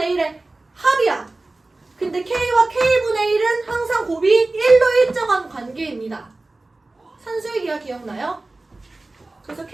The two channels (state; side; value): quieter; left; 3.1 dB